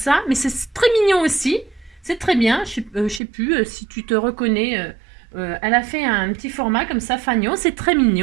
mais c'est très mignon aussi. C'est très bien, je sais plus si tu te reconnais. Elle a fait un petit format comme ça, fagnon, c'est très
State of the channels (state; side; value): drops out; left; at 3.2 s